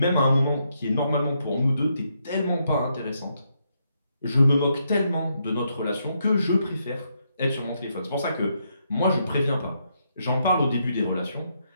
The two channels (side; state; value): both; inverted; correlation -0.78